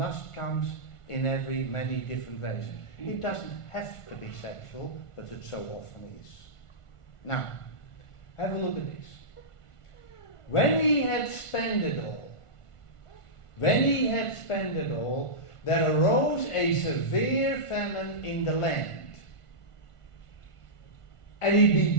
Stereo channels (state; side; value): late; right; 1.5 ms